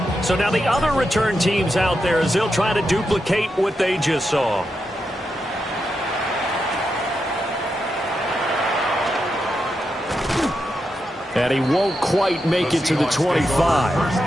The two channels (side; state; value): both; normal; correlation 0.86